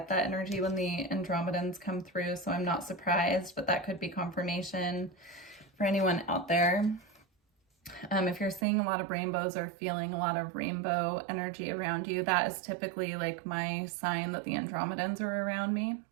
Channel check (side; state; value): left; drops out; at 8.7 s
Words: that energy when the Andromedans come through, so I'm not surprised, but that could be confirmation for anyone out there. If you're seeing a lot of rainbows or feeling a lot of rainbow energy around you, that is typically like my sign that the Andromedans are around me.